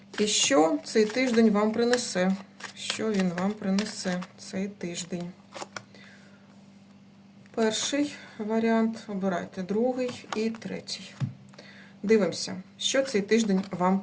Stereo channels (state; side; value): identical; both; correlation 1.00